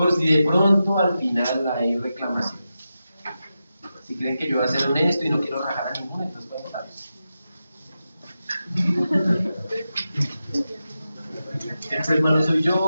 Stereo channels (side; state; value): both; inverted; correlation -0.90